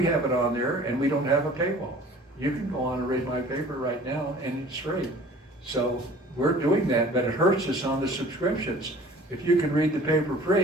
have it on there, and we don't have a paywall. You can go on and read my paper right now, and it's free. So we're doing that, but it hurts us on the subscriptions. If you can read the paper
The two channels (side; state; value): both; normal; correlation 0.48